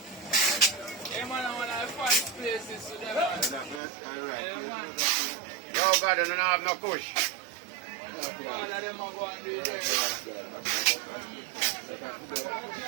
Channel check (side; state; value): left; drops out; at 3.8 s